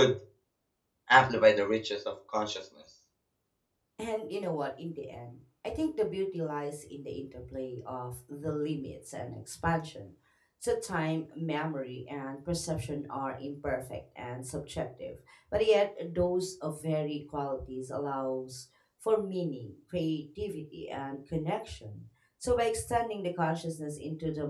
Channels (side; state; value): both; identical; correlation 1.00